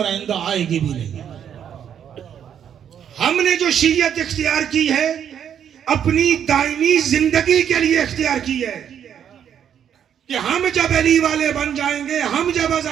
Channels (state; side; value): quieter; left; 8.9 dB